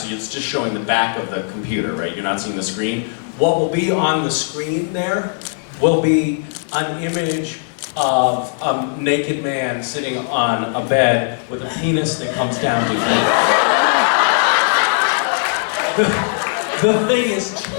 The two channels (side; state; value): right; silent; digital silence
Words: it's just showing the back of the computer, right? You're not seeing the screen. What will be on the screen there will be an image of a naked man sitting on a bed with a penis that comes down to feet. The thing is